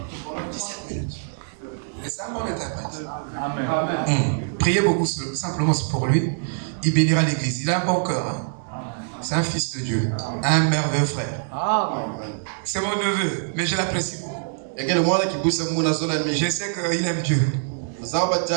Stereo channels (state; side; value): silent; left; digital silence